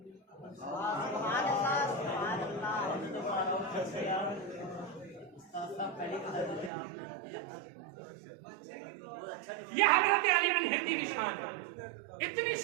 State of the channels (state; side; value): drops out; left; at 6.7 s